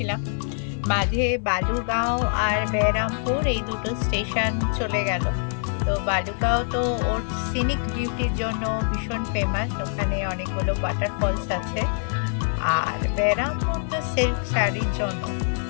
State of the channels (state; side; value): silent; right; 58 dB below the other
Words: মাঝে বালুগাঁও আর বেরামপুর এই দুটো স্টেশন চলে গেল। তো বালুগাঁও তো ওর সিনিক বিউটির জন্য ভীষণ ফেমাস, ওখানে অনেকগুলো ওয়াটারফলস আছে। আর বেরামপুর তো সিল্ক শাড়ির জন্য